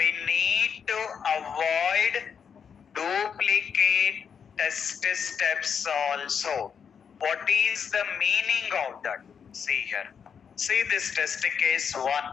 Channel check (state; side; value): quieter; right; 7.0 dB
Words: need to avoid duplicate test steps also. What is the meaning of that? See here. See this test case 1.